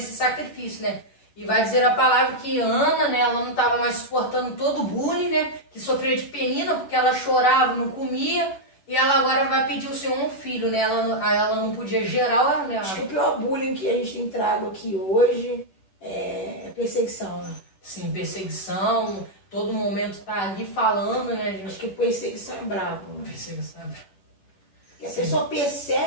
sacrifício, né. E vai dizer a palavra que Ana, né, ela não estava mais suportando todo o bullying, né, que sofria de Penina, porque ela chorava, não comia, e ela agora vai pedir o Senhor um filho, né, ela não podia gerar, né. Acho que o pior bullying que a gente tem trago aqui hoje é perseguição, né? Sim, perseguição, todo momento tá ali falando, né, gente. Acho que perseguição é brabo, né? Perseguição. Porque a pessoa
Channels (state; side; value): late; right; 10 ms